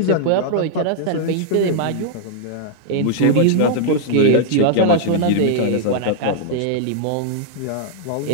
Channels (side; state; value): both; different; correlation -0.01